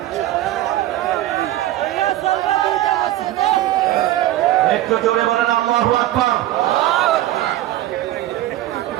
একটু জোরে বলেন আল্লাহু আকবার।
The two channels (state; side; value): quieter; left; 14.6 dB